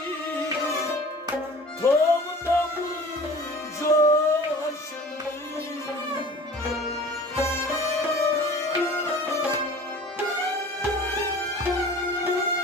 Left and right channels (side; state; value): both; normal; correlation 0.43